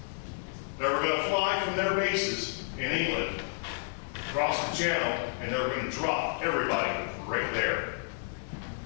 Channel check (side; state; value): right; silent; digital silence